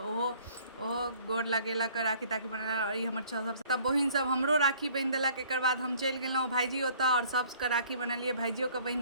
गोर लगेलक, राखी ताखी बनेलक। और ई हमर सबसँ बहिन सब हमरो राखी बान्हि देलक। एकर बाद हम चलि गेलहुँ भाइजी ओतऽ और सबके राखी बनेलिए, भाइजियोके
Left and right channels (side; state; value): both; inverted; correlation -0.55